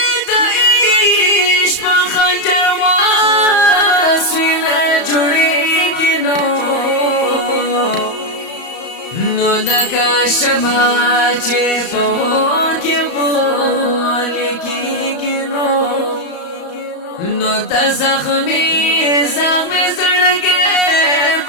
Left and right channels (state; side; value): late; right; 34 ms